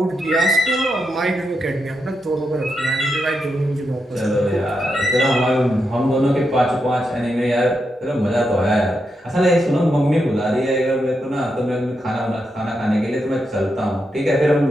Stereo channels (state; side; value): normal; both; correlation 0.84